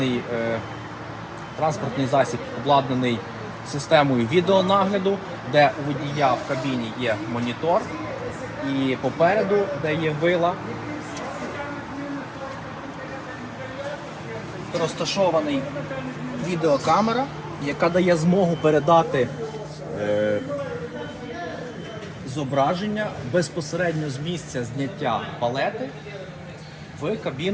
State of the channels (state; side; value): identical; both; correlation 1.00